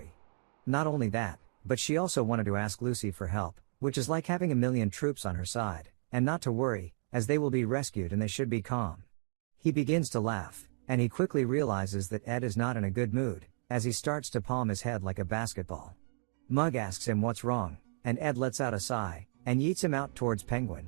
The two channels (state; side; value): silent; left; 56 dB below the other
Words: Not only that, but she also wanted to ask Lucy for help, which is like having a million troops on her side, and not to worry, as they will be rescued and they should be calm. He begins to laugh, and he quickly realizes that Ed is not in a good mood, as he starts to palm his head like a basketball. Mug asks him what's wrong, and Ed lets out a sigh, and yeets him out towards